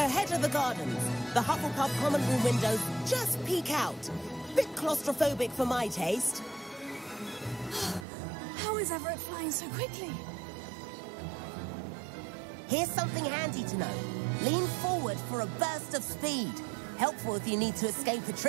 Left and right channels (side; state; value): left; drops out; at 8.1 s